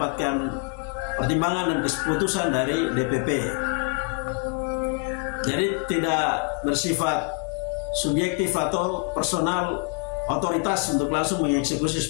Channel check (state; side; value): quieter; right; 37.3 dB